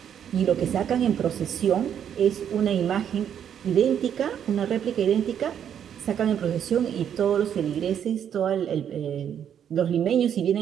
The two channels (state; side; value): quieter; left; 9.0 dB